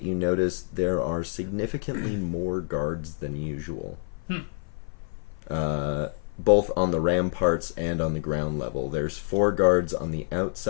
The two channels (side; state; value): right; silent; 55 dB below the other